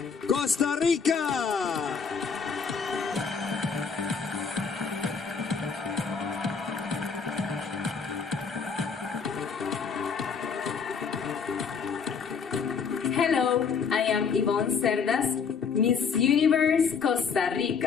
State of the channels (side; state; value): right; quieter; 5.8 dB